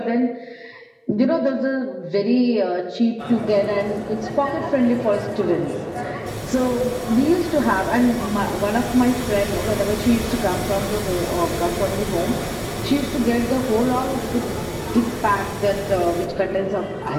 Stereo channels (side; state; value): both; identical; correlation 1.00